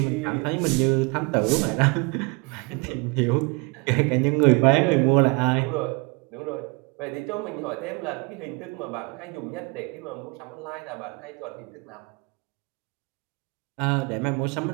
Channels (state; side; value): quieter; left; 29.2 dB